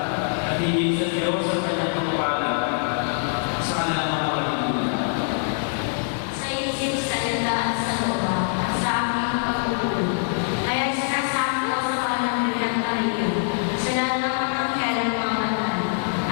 at hingin sa Diyos ang kanyang pagpapala sa kanilang mga pagkakulang. Sa isip, sa landaan, sa lupa, at sa aming pagkukulo. Kaya sinasabi ko sa kanang bilang Maria, sa lahat ng mga kailang mga banal,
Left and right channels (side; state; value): right; silent; digital silence